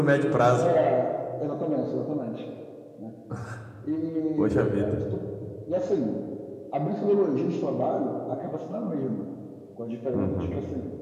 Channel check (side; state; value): both; identical; correlation 1.00